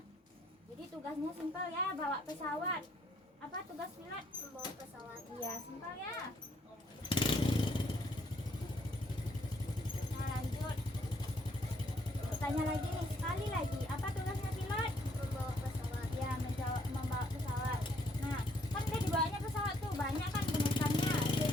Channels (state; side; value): normal; both; correlation 0.68